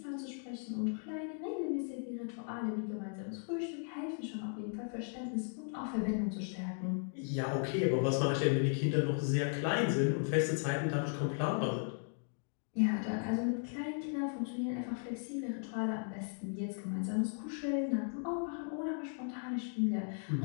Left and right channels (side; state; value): right; silent; 53 dB below the other